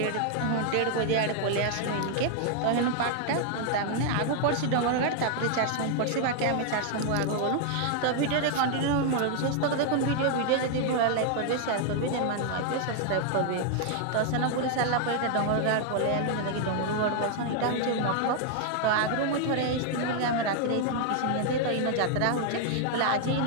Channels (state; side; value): different; both; correlation 0.00